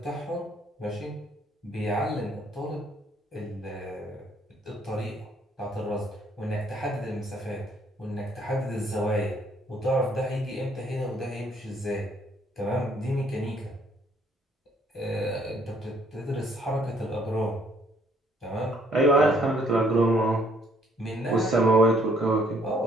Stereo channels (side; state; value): both; normal; correlation 0.65